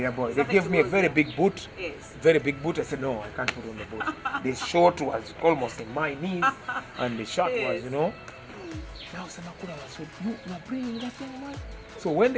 boy. They gave me a very big boot. Yes. Very big boot. I said, no, I can't put on the boot. The short was almost in my knees, and the shirt was, Now Simakula said, you are bringing that young man. So when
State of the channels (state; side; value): identical; both; correlation 1.00